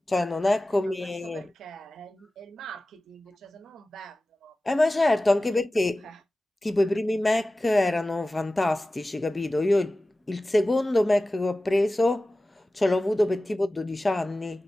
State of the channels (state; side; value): normal; both; correlation 0.96